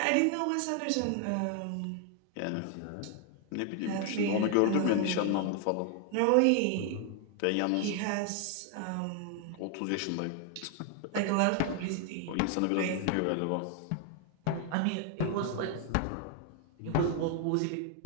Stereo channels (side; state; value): both; different; correlation 0.00